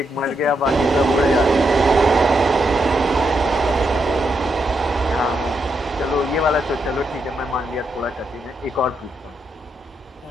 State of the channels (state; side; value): normal; both; correlation 0.81